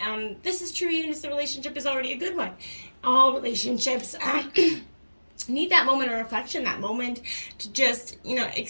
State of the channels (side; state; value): both; inverted; correlation -1.00